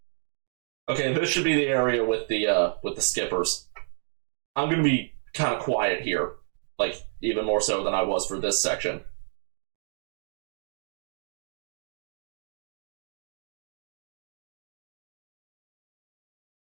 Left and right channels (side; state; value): left; silent; digital silence